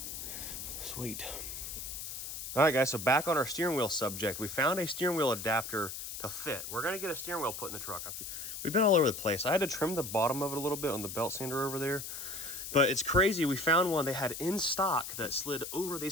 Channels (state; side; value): noise; left; hiss, 7 dB below the sound